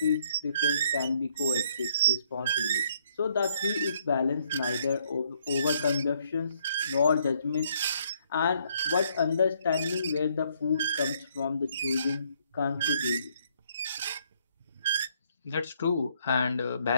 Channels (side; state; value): both; inverted; correlation -0.68